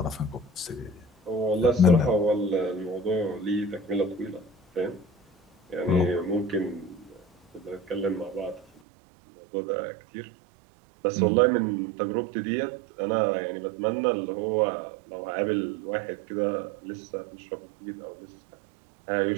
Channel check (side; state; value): left; drops out; at 8.7 s